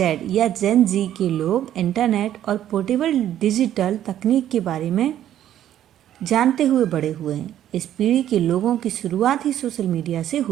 या जेन जी के लोग इंटरनेट और पोर्टेबल डिजिटल तकनीक के बारे में जानते हुए बड़े हुए हैं। इस पीढ़ी के लोगों की शुरुआत ही सोशल मीडिया से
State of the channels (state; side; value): quieter; left; 11.5 dB